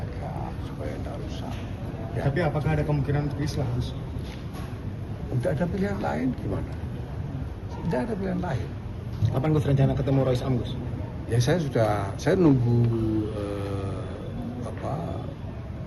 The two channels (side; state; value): both; identical; correlation 1.00